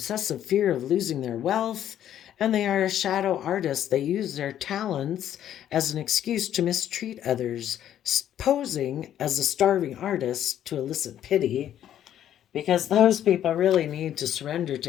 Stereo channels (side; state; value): right; quieter; 10.9 dB